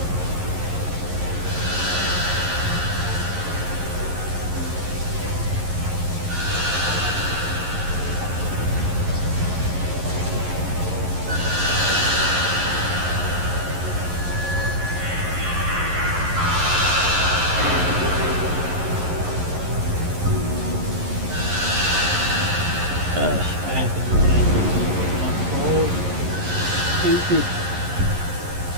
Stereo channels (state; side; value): late; left; 11 ms